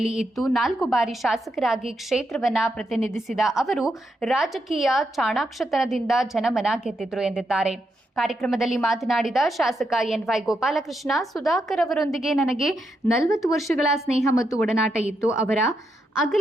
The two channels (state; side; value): normal; both; correlation 0.82